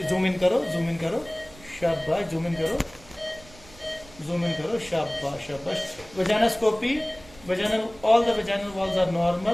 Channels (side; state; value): right; noise; rumble, 22 dB below the sound